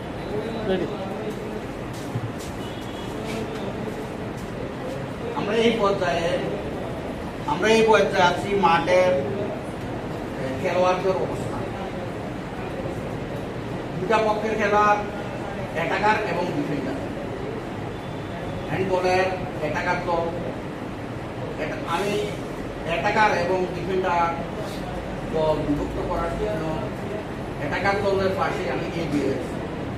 ready. আমরা এই পর্যায়ে আছি মাঠের খেলোয়াড়দের অবস্থা। দুটা পক্ষের খেলোয়াড় অ্যাটাকার এবং ডিফেন্ডার। হ্যান্ডবলের অ্যাটাকার দল, আমি অ্যাটাকার এবং ডিফেন্ডার দল বিভক্ত করার জন্য অ্যাটাকার দলের পাশে আমি এগিয়ে আছি।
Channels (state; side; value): identical; both; correlation 1.00